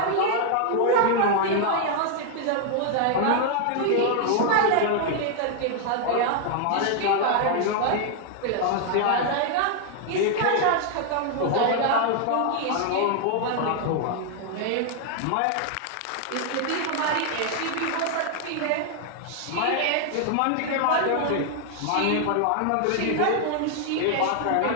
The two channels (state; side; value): different; both; correlation 0.00